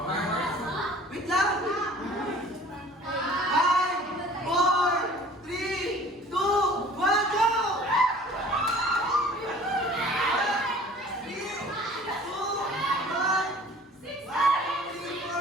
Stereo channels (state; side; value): normal; both; correlation 0.49